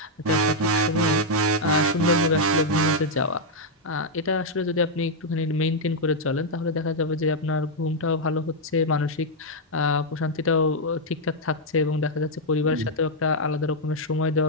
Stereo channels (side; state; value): both; normal; correlation -0.02